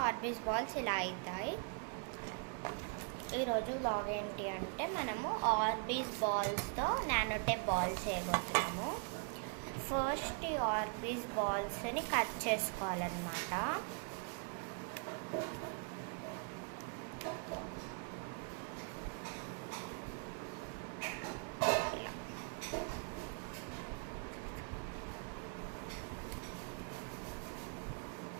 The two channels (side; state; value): left; quieter; 38.2 dB